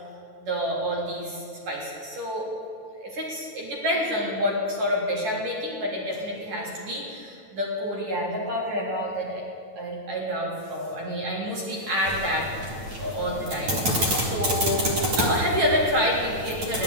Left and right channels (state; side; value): late; left; 9.2 ms